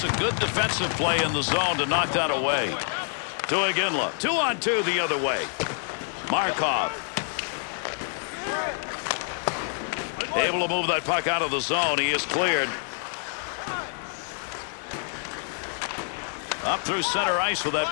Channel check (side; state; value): right; silent; 60 dB below the other